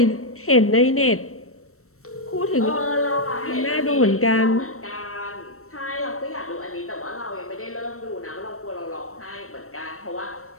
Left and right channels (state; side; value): late; right; 0.63 ms